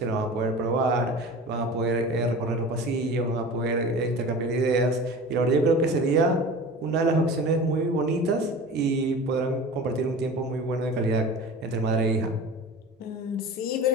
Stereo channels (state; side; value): normal; both; correlation 0.36